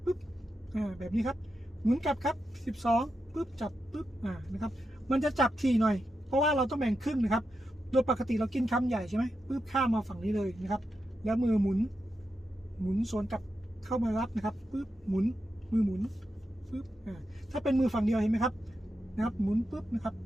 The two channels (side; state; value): both; normal; correlation 0.87